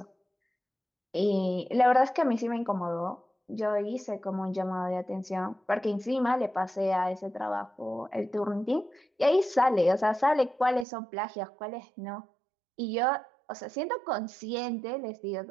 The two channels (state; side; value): drops out; left; at 10.9 s